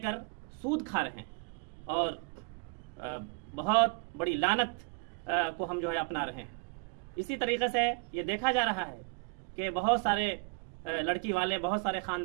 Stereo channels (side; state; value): left; quieter; 34.2 dB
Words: सूद खा रहे हैं और बहुत बड़ी लानत को हम जो है अपना रहे हैं। इसी तरीके से ये देखा जा रहा है कि बहुत सारे लड़की वाले, बहुत सारे